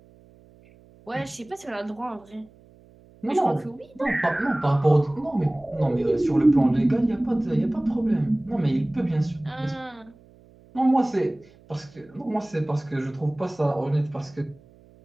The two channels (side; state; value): right; noise; hum, 27 dB below the sound